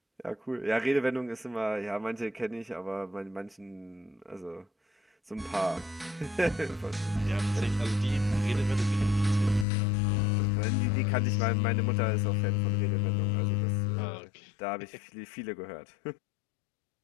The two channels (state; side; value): drops out; right; at 9.7 s